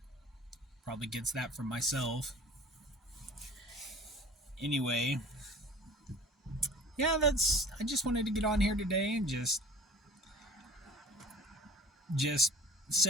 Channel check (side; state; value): both; normal; correlation 0.45